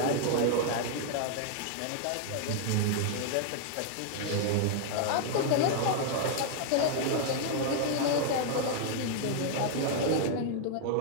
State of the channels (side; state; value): both; different; correlation -0.01